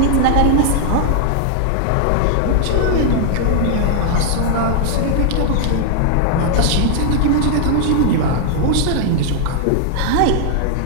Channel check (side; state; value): both; different; correlation -0.01